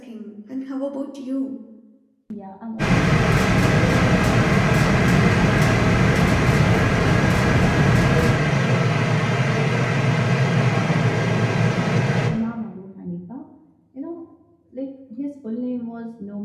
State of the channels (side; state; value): both; identical; correlation 1.00